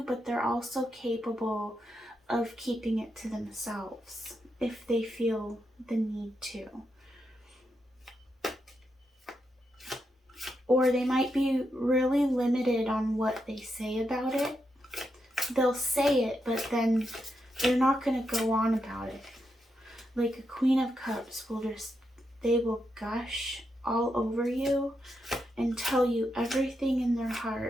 but they're also capable of keeping it to themselves if they feel the need to. Or they might be really limited on what they say about it. They'll say it, but then they're not going to go on about it. Like a Queen of Cups they will gush all over you and tell you everything in their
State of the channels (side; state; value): both; normal; correlation 0.83